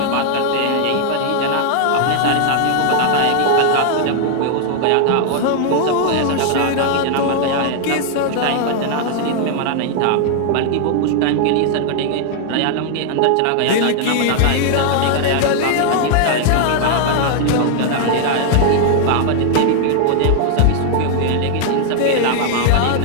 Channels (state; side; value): different; both; correlation 0.00